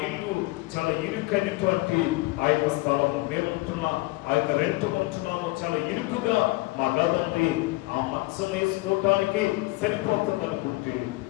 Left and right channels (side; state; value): right; quieter; 21.7 dB